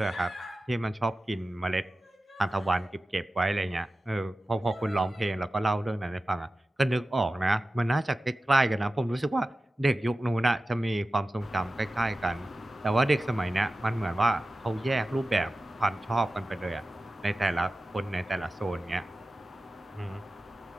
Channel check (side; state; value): both; normal; correlation 0.95